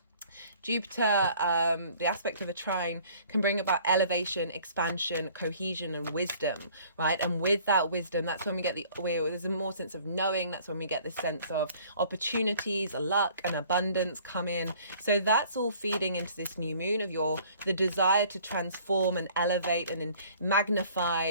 Jupiter, the aspect of a trine, can bring about elevation, expansion, cohesion, and wisdom, right? And with that wisdom, that's when we get there's a more sense of knowing. That's when we get the sense of opportunities, luck, and abundance come in. So that's all feeding into this new moon of the desire to transform and elevate and magnify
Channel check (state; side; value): inverted; both; correlation -0.54